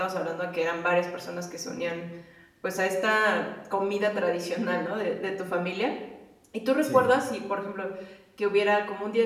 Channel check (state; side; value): identical; both; correlation 1.00